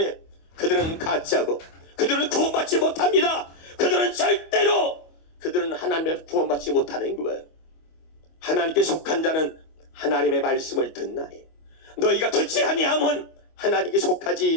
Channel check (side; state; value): right; late; 25 ms